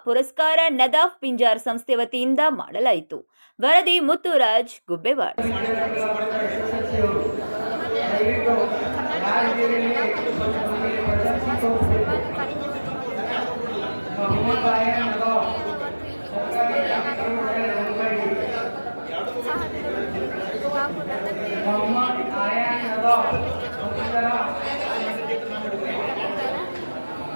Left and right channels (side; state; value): both; inverted; correlation -1.00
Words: ಪುರಸ್ಕಾರ ನದಾಫ್ ಪಿಂಜಾರ್ ಸಂಸ್ಥೆ ವತಿಯಿಂದ ಮಾಡಲಾಯಿತು. ವರದಿ ಮುತ್ತುರಾಜ್ ಗುಬ್ಬೆವಾಡ.